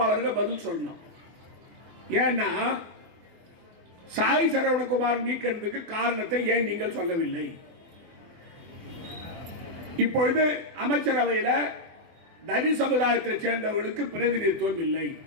பதில் சொல்லணும். ஏன்னா சாய் சரவணகுமார் நீக்கிறதுக்கு காரணத்தை ஏன் நீங்கள் சொல்லவில்லை? இப்பொழுது அமைச்சரவையில் தனி சமுதாயத்தை சேர்ந்தவர்களுக்கு பிரதிநிதித்துவம் இல்லை.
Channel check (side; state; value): left; late; 24 ms